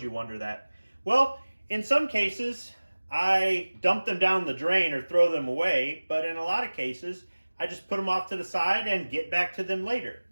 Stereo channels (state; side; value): inverted; both; correlation -1.00